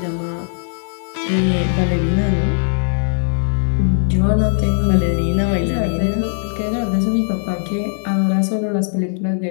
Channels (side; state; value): right; silent; digital silence